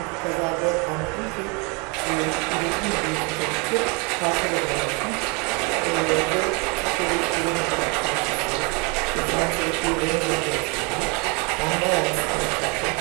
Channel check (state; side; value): quieter; left; 31.2 dB